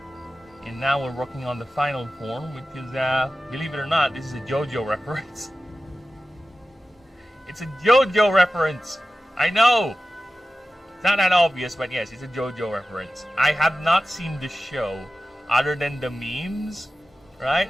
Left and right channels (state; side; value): normal; both; correlation 0.94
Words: In And now we're working on the final form, which is, believe it or not, this is a JoJo reference. It's a JoJo reference! I know! It's not that obvious, but yes, it's a JoJo reference. I have not seen the show, other than the memes, right?